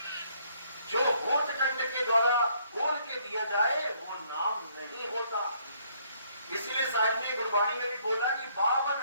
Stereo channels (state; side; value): inverted; both; correlation -0.67